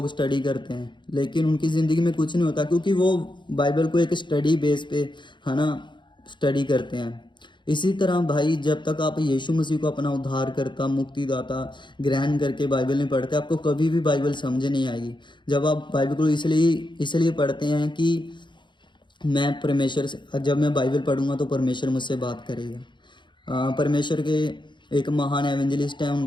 स्टडी करते हैं, लेकिन उनकी ज़िंदगी में कुछ नहीं होता, क्योंकि वो बाइबल को एक स्टडी बेस पे, है ना, स्टडी करते हैं। इसी तरह भाई, जब तक आप यीशु मसीह को अपना उद्धारकर्ता, मुक्तिदाता ग्रहण करके बाइबल नहीं पढ़ते, आपको कभी भी बाइबल समझ नहीं आएगी। जब आप बाइबल को इसलिए पढ़ते हैं कि मैं परमेश्वर से, जब मैं बाइबल पढ़ूंगा तो परमेश्वर मुझसे बात करेगा। परमेश्वर के एक महान एवेंजलिस्ट हैं,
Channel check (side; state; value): right; late; 0.23 ms